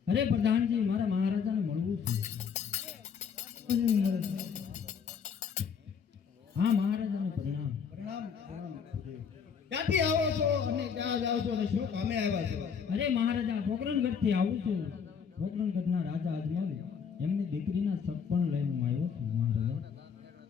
અરે પ્રધાનજી, મારા મહારાજાને મળવું છે. હા મહારાજાને પ્રણામ. પ્રણામ. ક્યાંથી આવો છો અને ક્યાં જાઓ છો અને શું કામે આવ્યા છો? અરે મહારાજા, પોકરણગઢથી આવું છું. પોકરણગઢના રાજા અજમલ એમની દીકરીના સપન લઈને આવ્યો છું મહારાજા.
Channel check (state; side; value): quieter; right; 6.7 dB